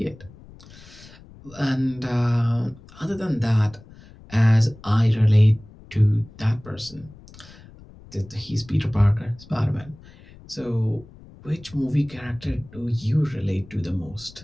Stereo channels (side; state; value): left; noise; rumble, 21 dB below the sound